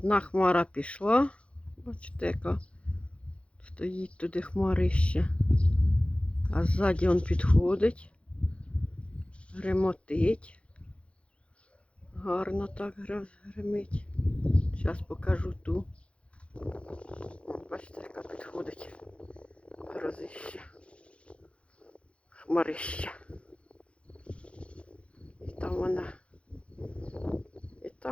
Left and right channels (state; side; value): late; right; 0.060 ms